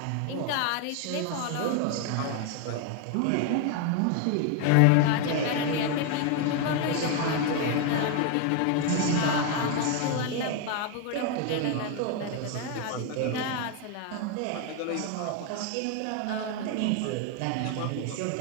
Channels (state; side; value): different; both; correlation 0.01